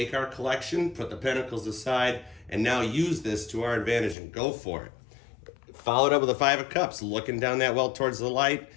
our collection, put the Pentacles aside, and now use this to our advantage and go for it. Followed up with the 5 of Cups, looking down that well towards the light,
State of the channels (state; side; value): drops out; right; at 4.2 s